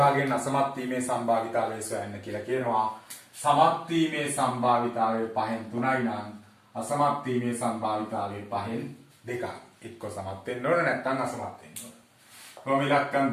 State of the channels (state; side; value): identical; both; correlation 1.00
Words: අසමත් වීමේ සම්භාවිතාවය සොයන්න කියලා කියනවා. සමත් වීමේ සම්භාවිතාවය 5න් 3යි නම් අසමත් වීමේ සම්භාවිතාවය 5න් 2යි. එක්ක සමත් වෙන්න ඕන නැත්නම් අසමත් වෙන්න ඕන. කොහොම